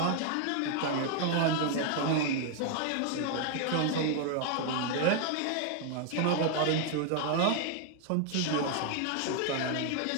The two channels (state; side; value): different; both; correlation 0.00